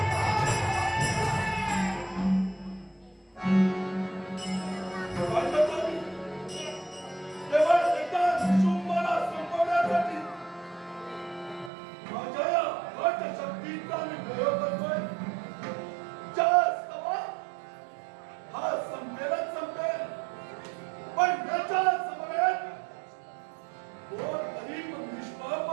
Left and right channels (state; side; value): drops out; left; at 11.7 s